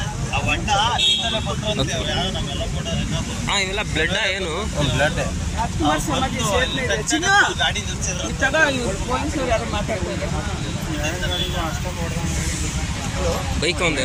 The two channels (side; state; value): both; identical; correlation 1.00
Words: ಇವೆಲ್ಲ ಬ್ಲಡ್ ಏನು? ಬ್ಲಡ್ ಬೈಕ್